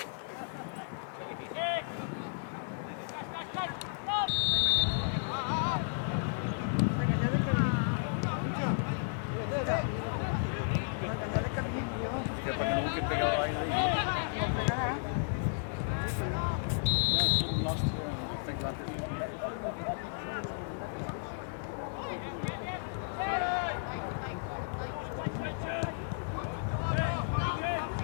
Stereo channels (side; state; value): right; silent; digital silence